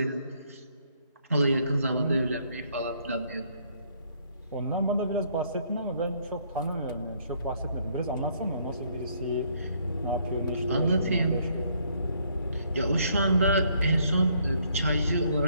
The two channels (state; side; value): inverted; both; correlation -0.68